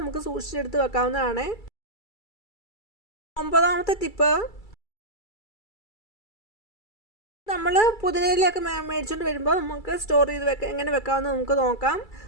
നമുക്ക് സൂക്ഷിച്ചെടുത്ത് വെക്കാവുന്നതാണ്. 9ാമത്തെ ടിപ്പ്, നമ്മൾ പുതിനയിലൊക്കെ മേടിച്ചുകൊണ്ട് വരുമ്പോൾ നമുക്ക് സ്റ്റോർ ചെയ്ത് എങ്ങനെ വെക്കാമെന്ന് നമുക്ക് നോക്കാം.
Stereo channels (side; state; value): right; late; 2.3 ms